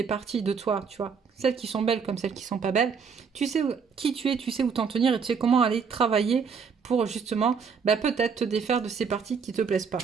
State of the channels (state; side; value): quieter; left; 6.0 dB